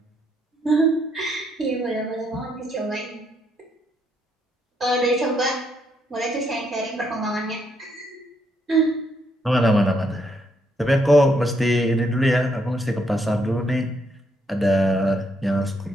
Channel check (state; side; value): normal; both; correlation 0.74